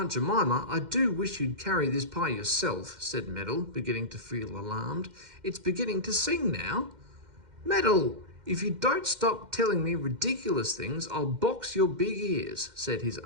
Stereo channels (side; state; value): left; late; 2.1 ms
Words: Jemima, I do wish you'd carry this pie yourself, said Meddle, beginning to feel alarmed. It's beginning to sing now. Meddle, if you don't stop telling me ridiculous things, I'll box your big ears, said his